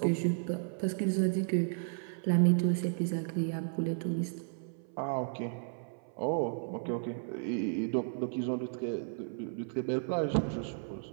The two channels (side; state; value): left; silent; 55 dB below the other